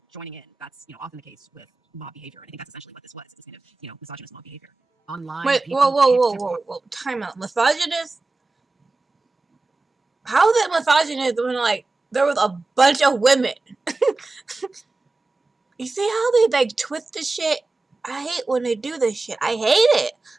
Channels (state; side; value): quieter; left; 3.4 dB